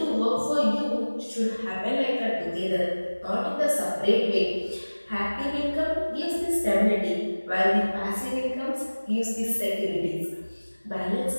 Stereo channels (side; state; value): both; inverted; correlation -1.00